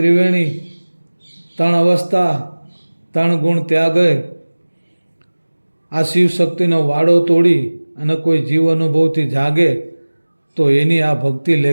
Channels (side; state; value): both; inverted; correlation -1.00